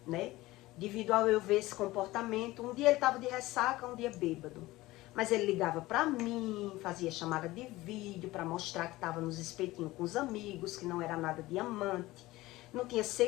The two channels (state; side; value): quieter; right; 18.5 dB